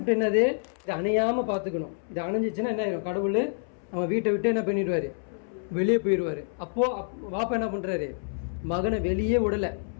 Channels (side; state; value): right; silent; 60 dB below the other